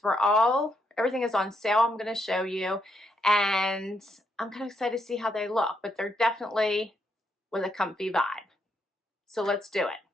Everything is on sale. I'm going to show you, and I'm kind of excited to see how they look, but they're definitely with a comfy vibe. So let's do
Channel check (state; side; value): normal; both; correlation 0.78